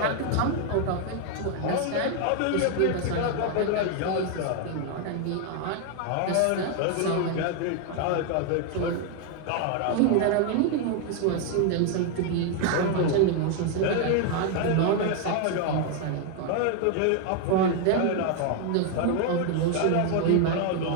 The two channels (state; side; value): different; both; correlation 0.00